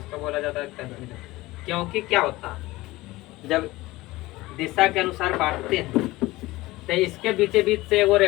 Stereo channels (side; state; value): right; quieter; 19.2 dB